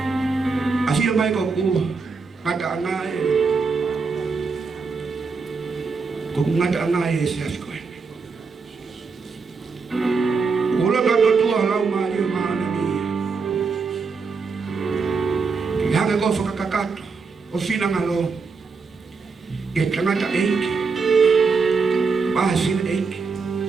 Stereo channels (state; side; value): quieter; left; 4.8 dB